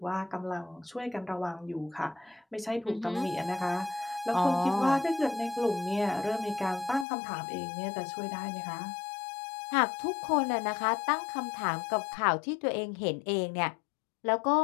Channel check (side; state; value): right; drops out; at 7.1 s